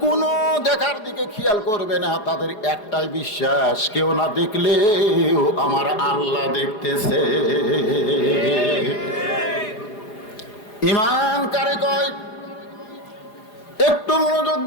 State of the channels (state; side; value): late; right; 4.8 ms